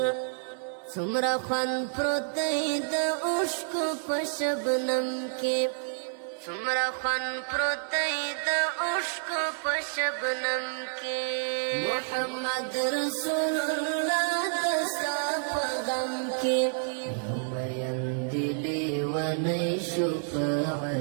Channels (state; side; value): silent; left; 58 dB below the other